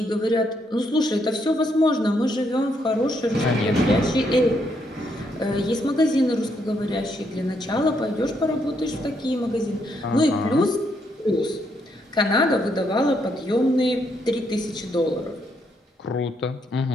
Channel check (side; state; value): both; normal; correlation 0.75